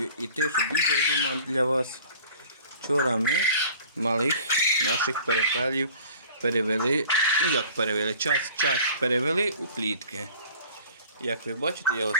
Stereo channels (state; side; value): inverted; both; correlation -0.47